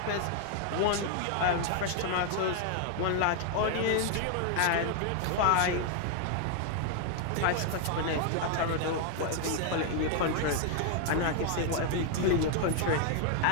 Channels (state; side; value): different; both; correlation 0.00